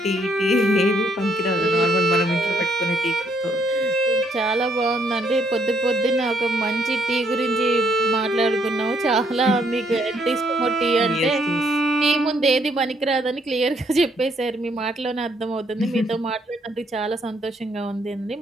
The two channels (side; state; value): both; normal; correlation 0.70